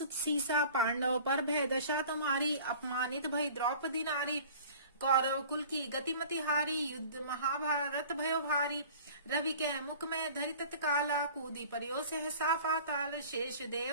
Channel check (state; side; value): inverted; both; correlation -0.45